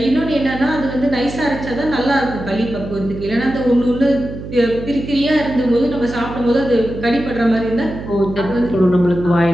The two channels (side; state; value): right; noise; hum, 10 dB below the sound